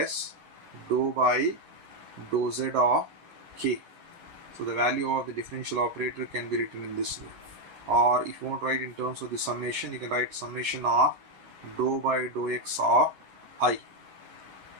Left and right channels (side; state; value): left; late; 11 ms